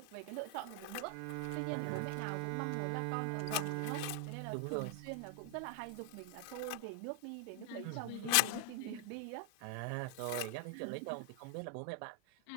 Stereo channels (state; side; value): different; both; correlation 0.00